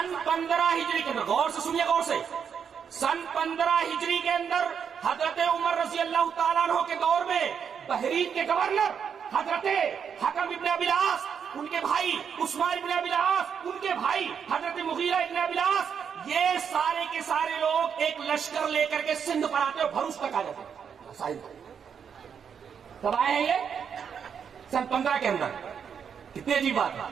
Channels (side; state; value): left; quieter; 7.3 dB